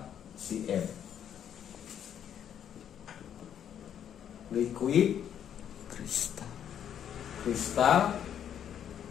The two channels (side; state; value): right; quieter; 9.3 dB